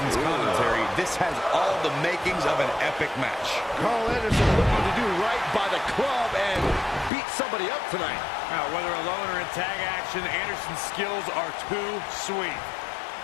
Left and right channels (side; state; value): right; drops out; at 7.1 s